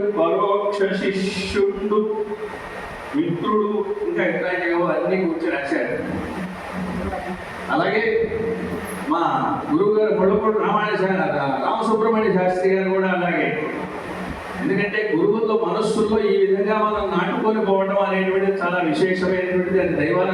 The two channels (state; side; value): identical; both; correlation 1.00